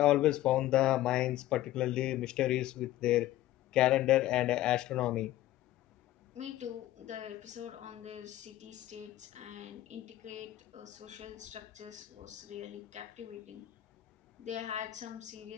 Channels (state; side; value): quieter; right; 14.7 dB